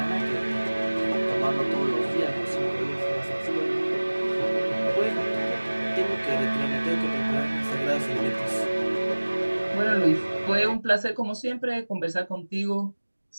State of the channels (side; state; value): both; inverted; correlation -1.00